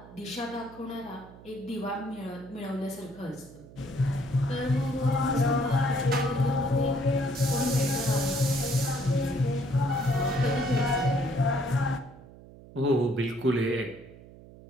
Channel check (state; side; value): noise; right; hum, 19 dB below the sound